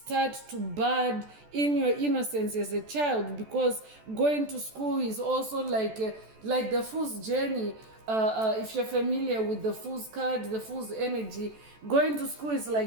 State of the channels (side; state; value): left; late; 14 ms